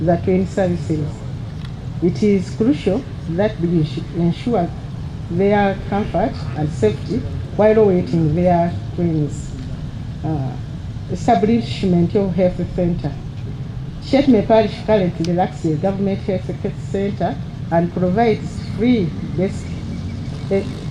train services, it is crucial that we ensure their comfort and safety while awaiting their trains. Establishment of health center. Chetume Parish currently lacks a government health center and provides free basic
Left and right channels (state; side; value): identical; both; correlation 1.00